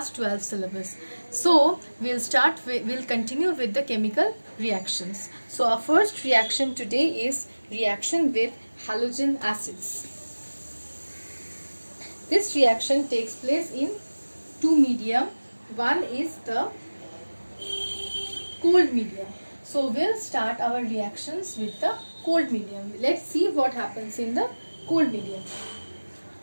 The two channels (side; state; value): both; inverted; correlation -1.00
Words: 12 syllabus. So we'll continue with the chemical reactions. So our first reaction today is reaction with halogen acids. This reaction takes place in two medium. One is the cold medium. So we'll start our reactions with the cold medium. Let's see what happens in the cold medium.